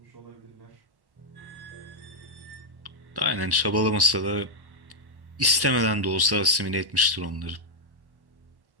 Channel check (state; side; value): late; left; 1.1 ms